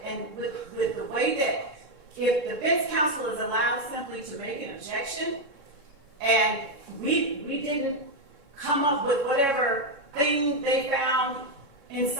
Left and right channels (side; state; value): left; late; 3.6 ms